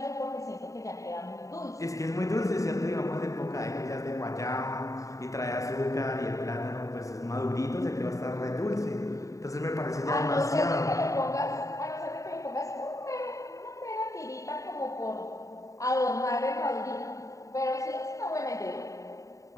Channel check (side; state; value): right; late; 0.16 ms